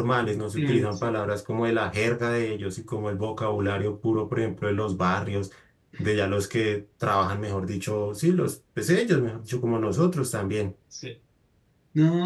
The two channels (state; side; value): identical; both; correlation 1.00